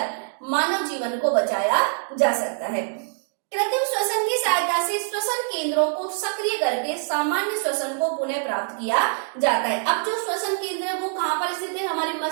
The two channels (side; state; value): left; silent; 62 dB below the other